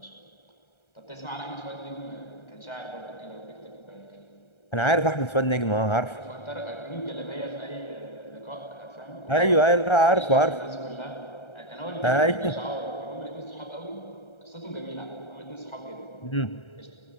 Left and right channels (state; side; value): late; right; 1.3 ms